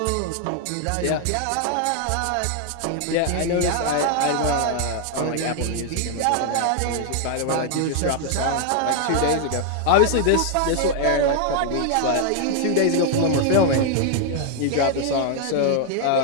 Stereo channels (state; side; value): different; both; correlation 0.00